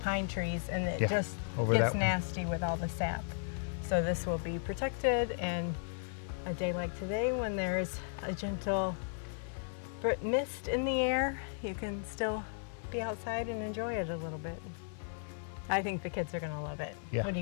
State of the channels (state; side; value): silent; right; digital silence